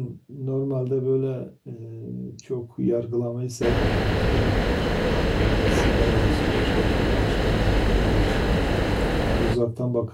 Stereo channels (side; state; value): both; identical; correlation 1.00